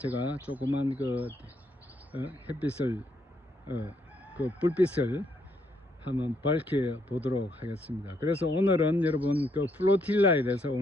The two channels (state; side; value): normal; both; correlation 0.74